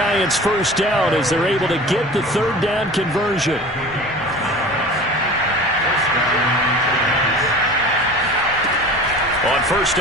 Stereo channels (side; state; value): both; normal; correlation 0.38